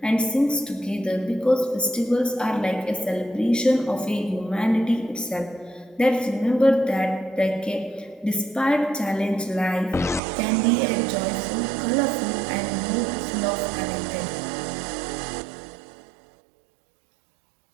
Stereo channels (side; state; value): left; drops out; at 10.2 s